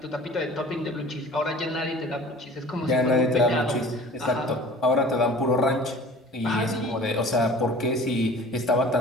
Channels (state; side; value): normal; both; correlation 0.44